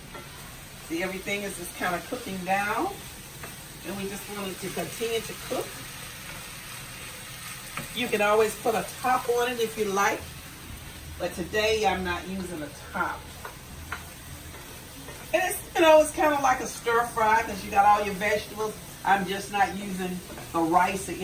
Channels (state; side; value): identical; both; correlation 1.00